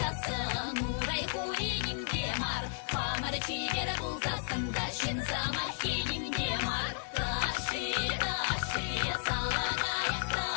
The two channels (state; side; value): silent; right; digital silence